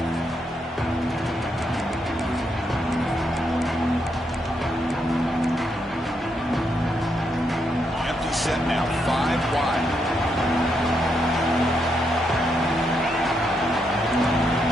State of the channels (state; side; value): normal; both; correlation 0.79